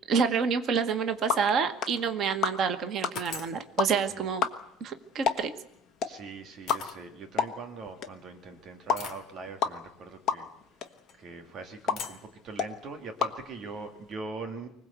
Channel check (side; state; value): both; normal; correlation 0.45